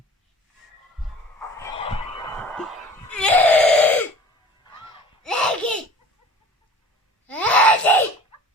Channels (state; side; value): normal; both; correlation 0.44